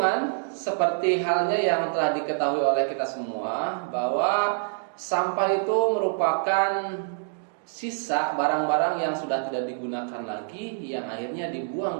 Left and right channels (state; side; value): silent; left; digital silence